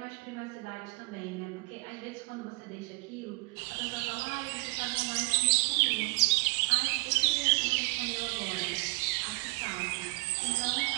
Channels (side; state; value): left; quieter; 31.7 dB